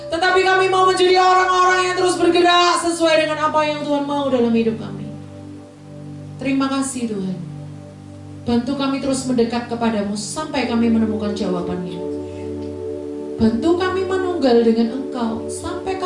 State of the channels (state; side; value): identical; both; correlation 1.00